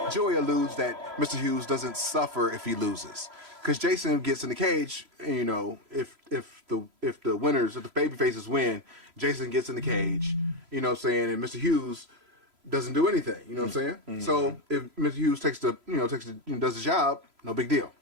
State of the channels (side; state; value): left; late; 3.0 ms